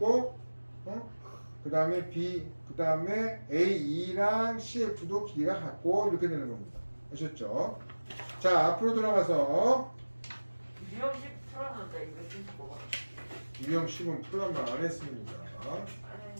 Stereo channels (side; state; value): both; inverted; correlation -1.00